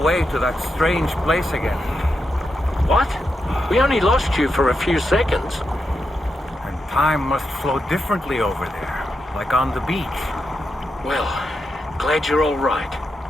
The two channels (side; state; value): both; normal; correlation 0.86